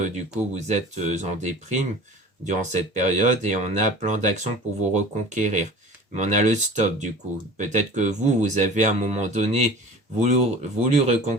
du coup vous êtes en déprime durant cette période et on a plein d'actions pour vous reconquérir. Mais on a le stop du coup. Peut-être que vous avez à un moment donné voulu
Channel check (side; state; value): both; normal; correlation 0.40